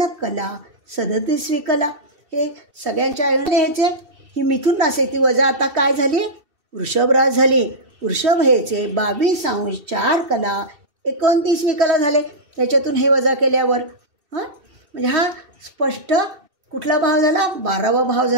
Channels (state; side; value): late; left; 2.7 ms